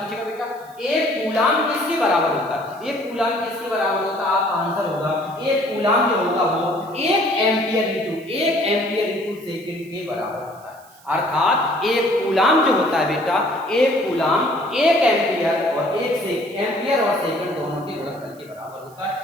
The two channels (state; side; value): noise; right; hiss, 26 dB below the sound